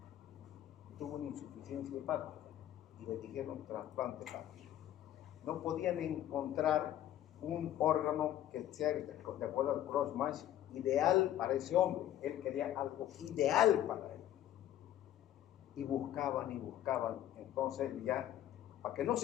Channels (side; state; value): right; quieter; 12.1 dB